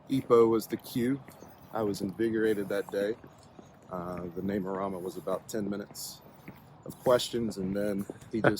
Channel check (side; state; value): both; identical; correlation 1.00